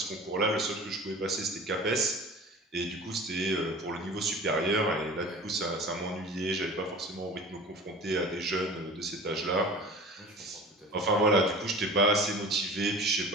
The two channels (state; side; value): normal; both; correlation 0.39